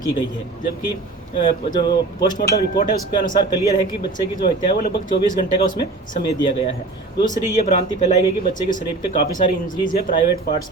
की गई है, जबकि जो पोस्टमार्टम रिपोर्ट है उसके अनुसार क्लियर है कि बच्चे की जो हत्या है वो लगभग 24 घंटे का उसमें समय दिया गया है। दूसरी ये भ्रांति फैलाई गई कि बच्चे के शरीर पे काफ़ी सारी इंजरीज है, प्राइवेट पार्ट्स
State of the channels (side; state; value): left; quieter; 3.4 dB